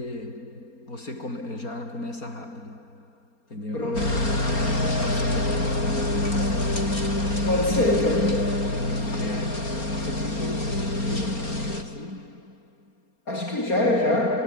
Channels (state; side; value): late; right; 4.3 ms